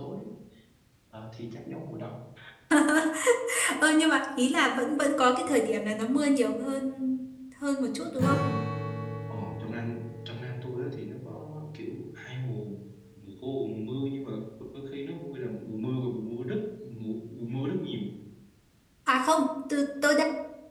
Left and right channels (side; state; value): both; identical; correlation 1.00